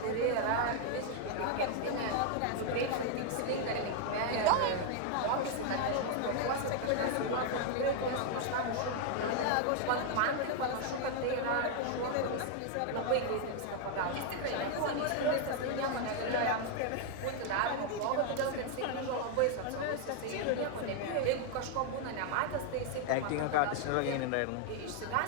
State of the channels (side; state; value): both; different; correlation 0.00